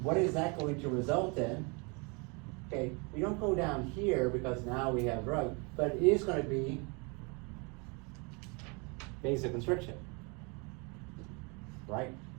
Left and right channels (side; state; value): left; quieter; 31.2 dB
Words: what is that going to result in? Okay, we don't go down here because now we have drug, but it is going to be vasoconstriction, right?